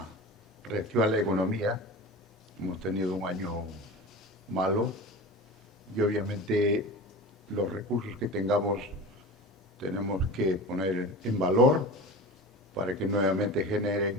reactivar la economía. Hemos tenido un año malo y obviamente los recursos que tengamos tenemos que poner en valor para que nuevamente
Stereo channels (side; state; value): both; normal; correlation 0.32